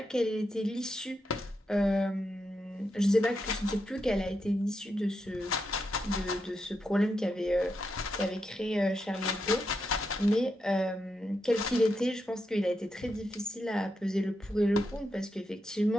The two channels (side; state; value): both; normal; correlation 0.84